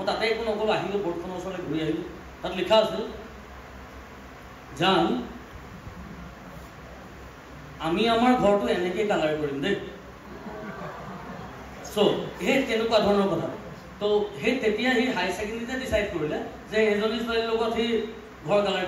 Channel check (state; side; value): identical; both; correlation 1.00